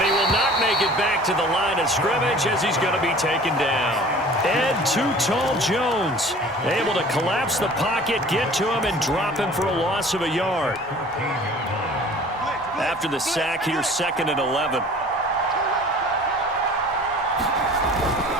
he will not make it back to the line of scrimmage as he's going to be taken down. Ed Too Tall Jones able to collapse the pocket, get to him, and drop him for a loss of a yard. After the sack, here's 2nd and 11.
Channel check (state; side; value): normal; both; correlation 0.46